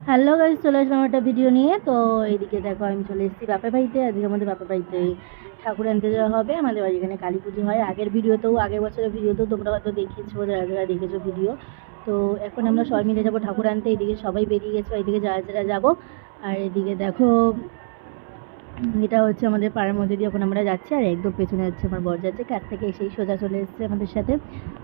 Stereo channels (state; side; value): silent; left; 64 dB below the other